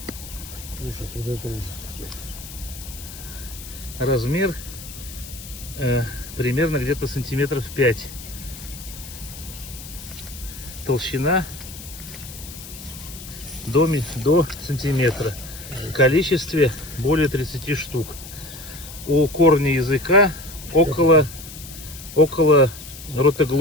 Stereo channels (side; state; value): left; noise; hiss, 14 dB below the sound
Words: Ужас, вот это ужас. Размер примерно где-то сантиметров 5. Толщина до сантиметра. В количестве более 30 штук. У корня языка около